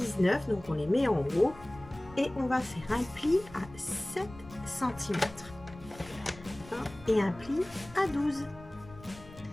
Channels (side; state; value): left; noise; rumble, 19 dB below the sound